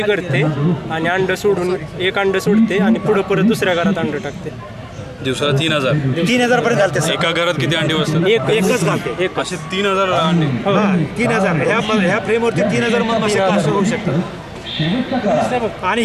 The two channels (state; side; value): identical; both; correlation 1.00